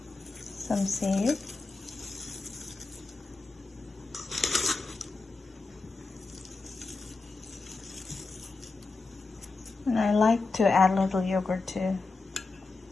Some save. And I like to add a little yogurt too.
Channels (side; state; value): right; quieter; 3.8 dB